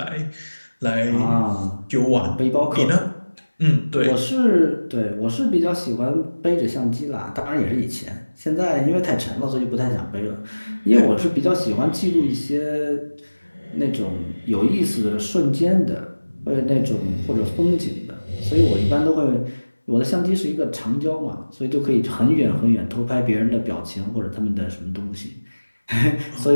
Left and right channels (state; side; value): inverted; both; correlation -1.00